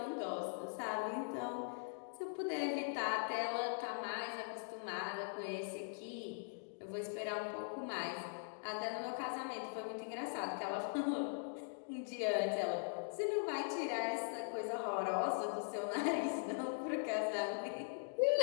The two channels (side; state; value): right; silent; digital silence